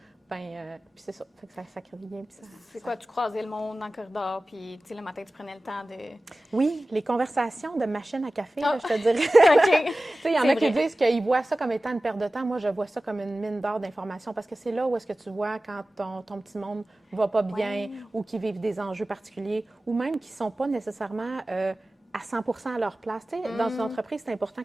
Puis c'est ça. Fait que ça crée bien. C'est quoi, tu croisais le monde dans le corridor, puis le matin, tu prenais le temps de... Oui, les conversations de machine à café, là, je te dirais. OK. Il y en a qui disent qu'ils voient ça comme étant une perte de temps. Moi, je vois ça comme une mine d'or d'informations parce que c'est là où est-ce que tu vois quand ton petit monde va pas bien ou qui vivent des enjeux particuliers ou même qui sont pas nécessairement à 100% à leur place. Dans une entreprise, c'est important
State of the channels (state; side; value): normal; both; correlation 0.96